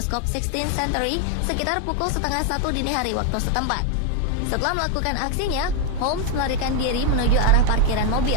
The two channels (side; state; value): both; different; correlation 0.01